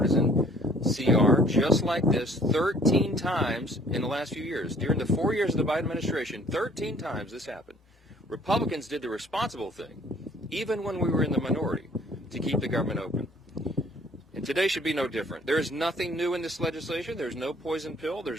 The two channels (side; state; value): both; normal; correlation 0.57